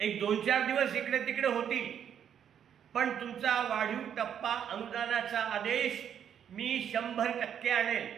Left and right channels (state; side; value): quieter; left; 8.8 dB